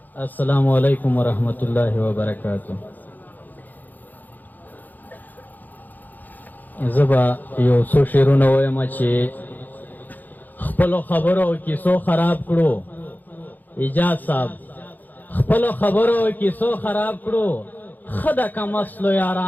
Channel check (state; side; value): late; right; 0.084 ms